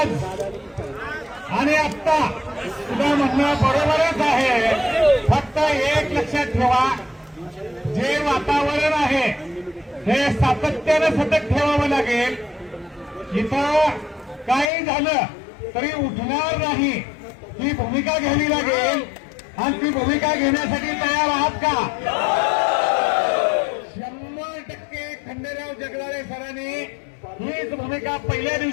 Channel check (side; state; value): right; drops out; at 14.7 s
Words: आणि आत्ता तुझं म्हणणं बरोबरच आहे. फक्त एक लक्षात ठेवा, जे वातावरण आहे हे सातत्यानं सतत ठेवावं लागेल. इथं काही झालं तरी उठणार नाही ही भूमिका घ्यावी लागेल. आणि ती भूमिका घेण्यासाठी तयार आहात का? 100% खंडेराव जगदाळे सरांनी हीच भूमिका पहिल्या